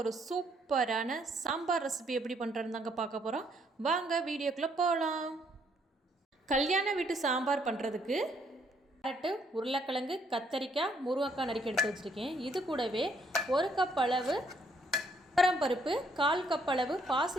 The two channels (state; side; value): normal; both; correlation 0.69